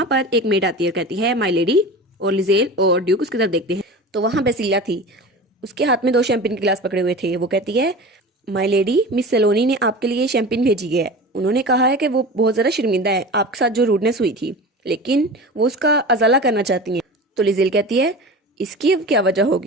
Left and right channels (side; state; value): both; normal; correlation 0.33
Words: पर एक मेड आती है और कहती है माई लेडी। और लिजेल और ड्यूक उसकी तरफ देखते हैं, तो वहाँ बेसिला थी, उसके हाथ में 2 शैम्पेन के गिलास पकड़े हुए थे। वो कहती है माई लेडी मिस सेलोनी ने आपके लिए शैम्पेन भेजी है, उन्होंने कहा है कि वो बहुत ज़्यादा शर्मिंदा है आपके साथ जो रूडनेस हुई थी, लेकिन वो उसका अजाला करना चाहती हैं। तो लिजेल कहती है इसकी अब क्या वजह